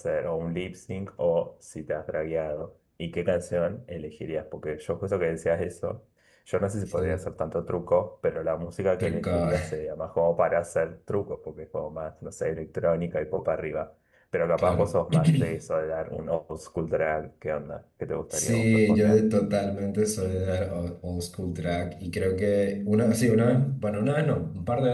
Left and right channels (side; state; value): both; identical; correlation 1.00